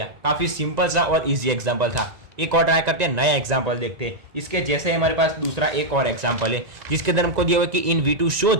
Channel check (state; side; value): late; left; 2.0 ms